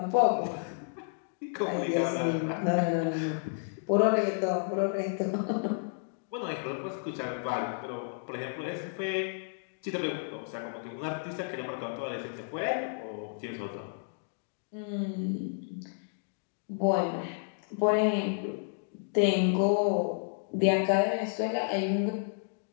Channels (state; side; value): silent; right; digital silence